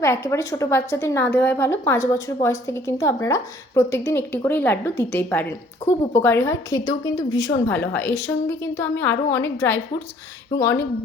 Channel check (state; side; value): normal; both; correlation 0.58